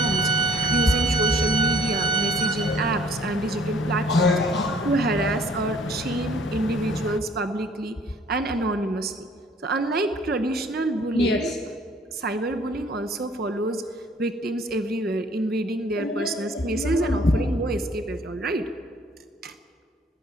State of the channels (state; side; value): normal; both; correlation 0.57